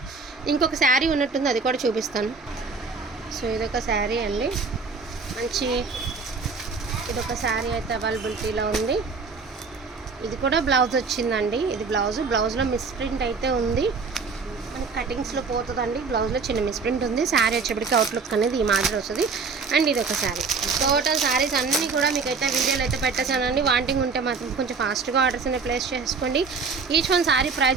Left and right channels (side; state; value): left; quieter; 4.7 dB